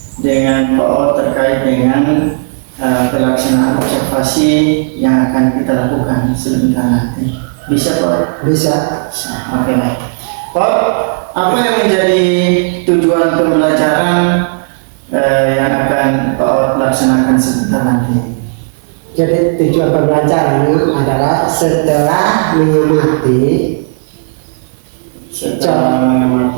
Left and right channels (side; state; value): left; silent; digital silence